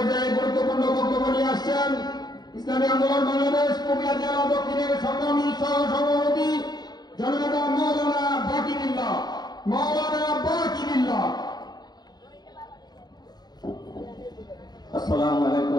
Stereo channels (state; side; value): late; right; 0.20 ms